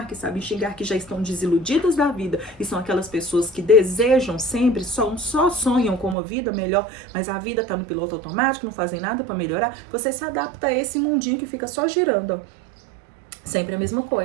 que sabem xingar, que já estão desiludidas da vida, e são aquelas pessoas que desejam sempre, só sonham com uma vida melhor, mas a vida está no piloto automático, não fazem nada para melhorar, você se adapta a esse mundinho que fica só girando. Sempre a mesma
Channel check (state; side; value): drops out; left; at 6.2 s